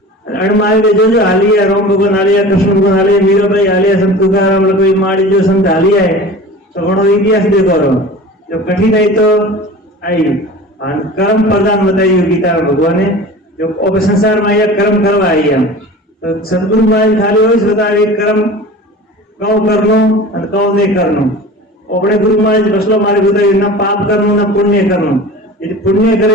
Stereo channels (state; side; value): normal; both; correlation 0.37